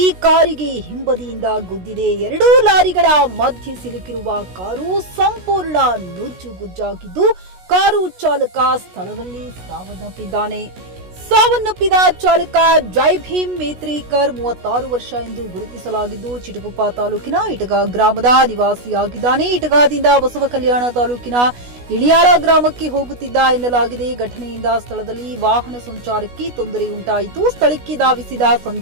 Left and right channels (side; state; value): left; late; 16 ms